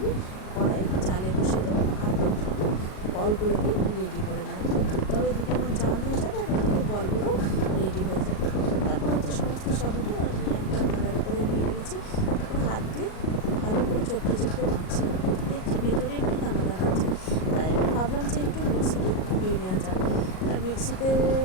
কড়াই জালে বসে দেবো আর বলগুলোকে রেডি করে নেব। দুধটাও এদিকে আমার জাল হয়ে যাবে আর ওদিকে বলগুলো রেডি হয়ে যাবে। তারপর সমস্ত সাবুটা আমি একটা থালার উপরে নিয়ে নিয়েছি। তারপর হাত দিয়ে ভালো করে চটকে মাখছিলাম, কিন্তু দেখছি ভেতরে একটু দানা আছে। তাই আমি ভাবলাম যে একটু মিক্সিতে ঘুরিয়ে নেওয়া যাক। আর মিক্সিতে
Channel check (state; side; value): late; right; 38 ms